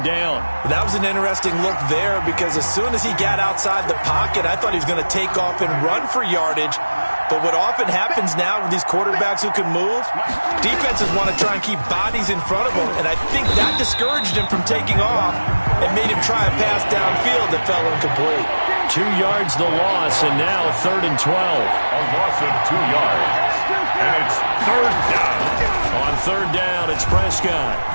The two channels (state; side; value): inverted; both; correlation -1.00